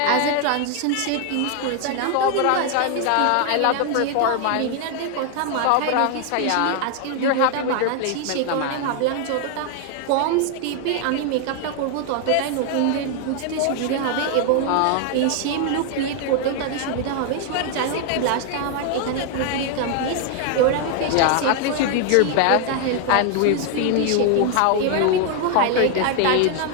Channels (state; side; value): different; both; correlation 0.00